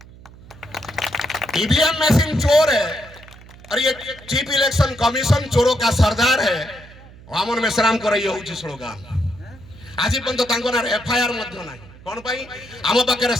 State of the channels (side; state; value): right; noise; hum, 20 dB below the sound